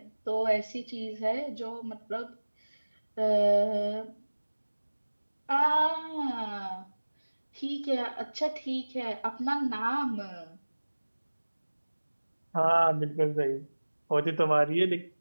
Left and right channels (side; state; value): both; inverted; correlation -1.00